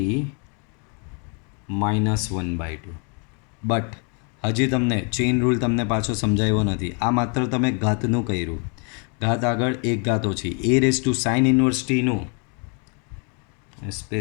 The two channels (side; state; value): right; quieter; 37.7 dB